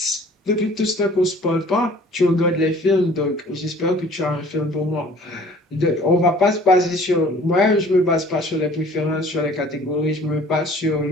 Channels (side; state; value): both; normal; correlation 0.51